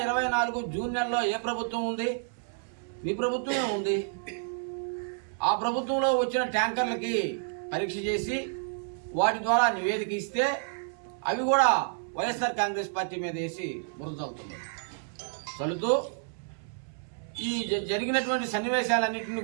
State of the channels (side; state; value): left; silent; 58 dB below the other